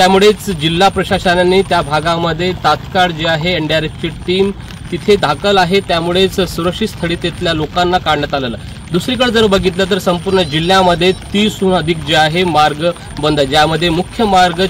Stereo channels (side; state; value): both; identical; correlation 1.00